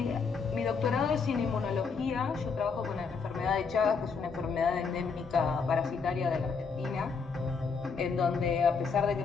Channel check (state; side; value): quieter; right; 5.2 dB